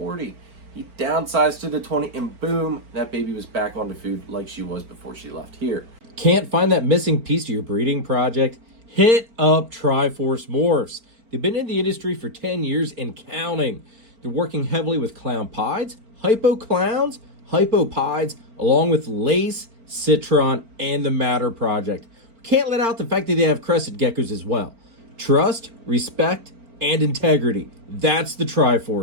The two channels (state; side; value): late; left; 4.4 ms